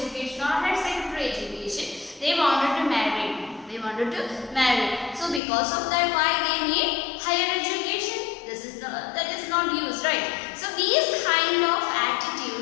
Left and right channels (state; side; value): drops out; right; at 5.4 s